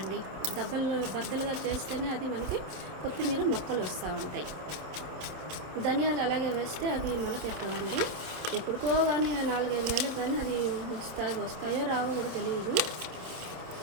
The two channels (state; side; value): late; left; 27 ms